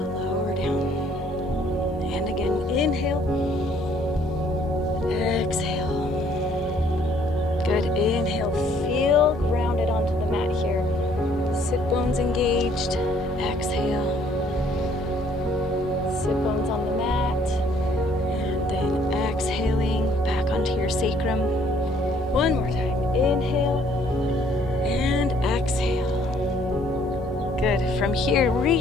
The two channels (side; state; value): both; normal; correlation 0.63